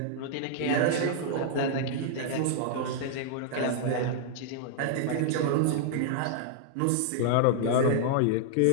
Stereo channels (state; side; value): different; both; correlation -0.01